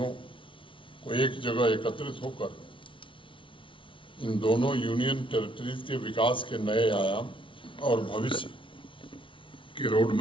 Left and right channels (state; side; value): late; right; 0.25 ms